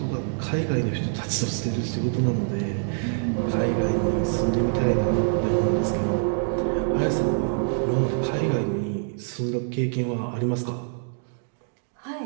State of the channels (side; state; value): left; silent; digital silence